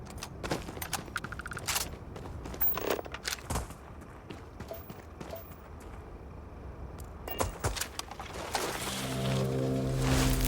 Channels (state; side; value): identical; both; correlation 1.00